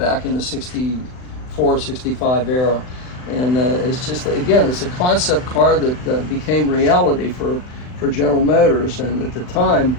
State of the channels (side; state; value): right; late; 39 ms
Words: in the 64, 65 era. And it's just, again, it's a concept car that became reality for General Motors. And at the time,